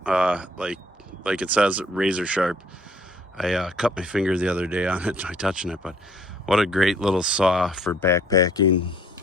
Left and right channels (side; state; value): both; normal; correlation 0.60